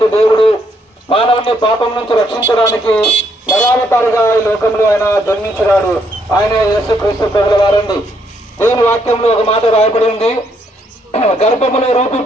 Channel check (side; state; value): both; normal; correlation 0.72